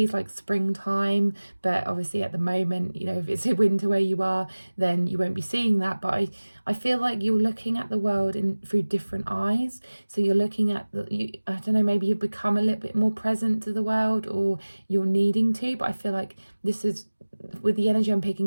like springtime, but obviously at the moment, if it's a winter where you are, then you won't be seeing that. But I feel like you're looking at the world through different eyes. So you're looking at I don't know, maybe you've become a little bit more present to the world, or you're needing to, but I feel like this is, with the energy I'm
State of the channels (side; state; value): both; inverted; correlation -1.00